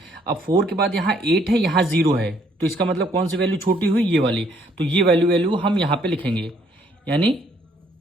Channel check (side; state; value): both; normal; correlation 0.66